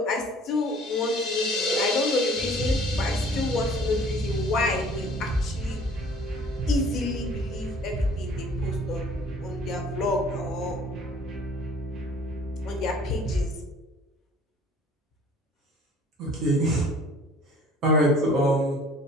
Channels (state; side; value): normal; both; correlation 0.52